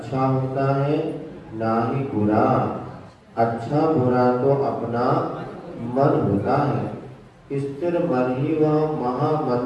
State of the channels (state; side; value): identical; both; correlation 1.00